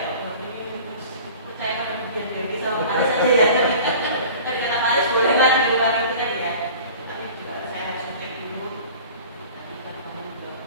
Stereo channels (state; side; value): inverted; both; correlation -0.43